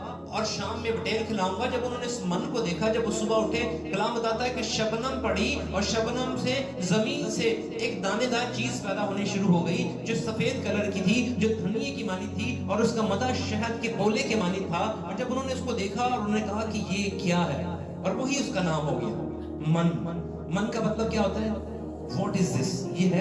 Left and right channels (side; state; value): both; identical; correlation 1.00